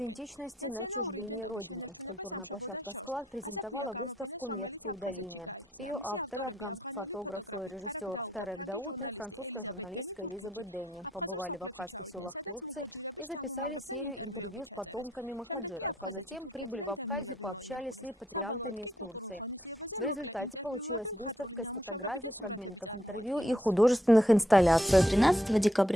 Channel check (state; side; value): normal; both; correlation 0.75